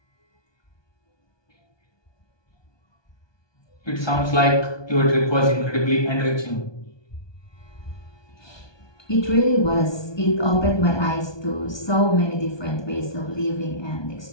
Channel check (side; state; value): right; late; 1.2 ms